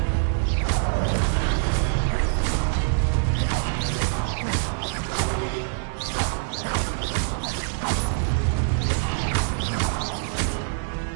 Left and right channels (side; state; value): left; silent; digital silence